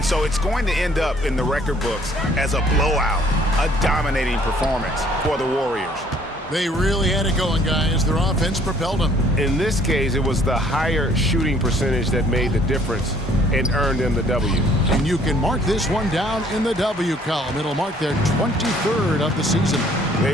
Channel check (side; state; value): both; normal; correlation 0.60